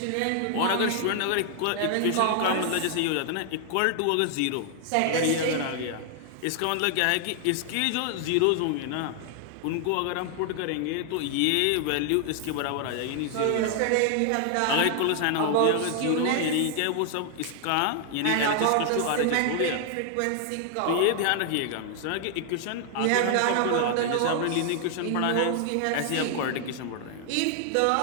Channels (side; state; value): both; different; correlation 0.00